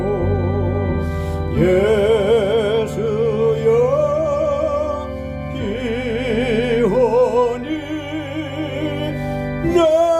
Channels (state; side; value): identical; both; correlation 1.00